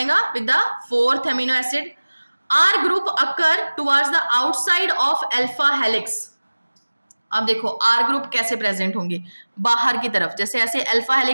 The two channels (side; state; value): both; inverted; correlation -1.00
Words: with the fourth amino acid. R group occur towards the outside of alpha helix. अब देखो आर ग्रुप कैसे प्रेजेंट होंगे, बाहर की तरफ, जैसे ऐसे अल्फा